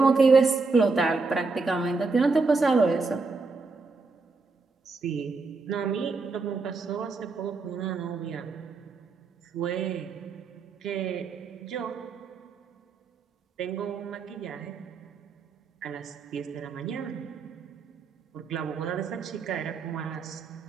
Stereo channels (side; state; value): left; quieter; 4.1 dB